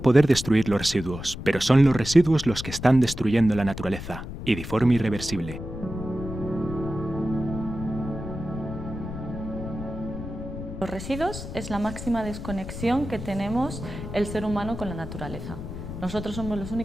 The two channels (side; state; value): left; noise; rumble, 9 dB below the sound